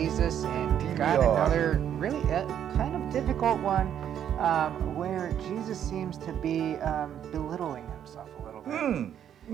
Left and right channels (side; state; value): left; quieter; 9.6 dB